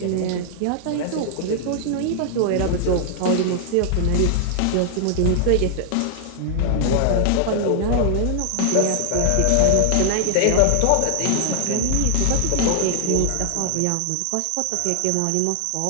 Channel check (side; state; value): both; different; correlation 0.00